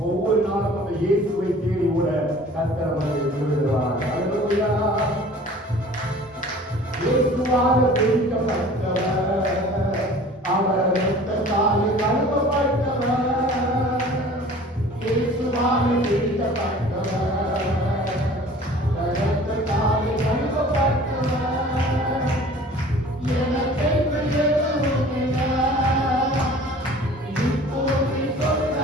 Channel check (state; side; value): normal; both; correlation 0.46